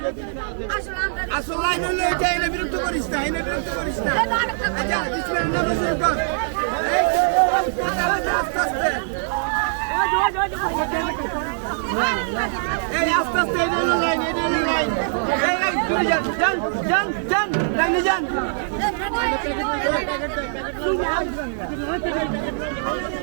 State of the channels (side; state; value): left; silent; digital silence